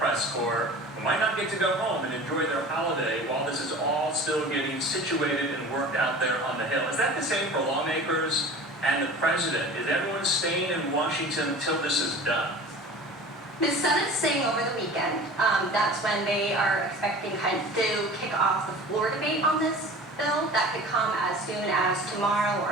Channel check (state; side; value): normal; both; correlation 0.40